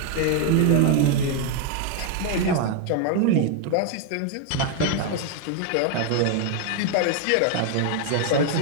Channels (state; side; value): different; both; correlation 0.01